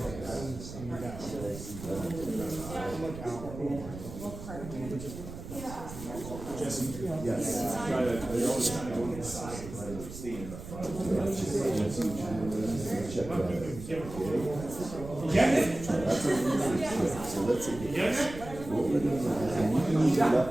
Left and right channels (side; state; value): right; noise; rumble, 11 dB below the sound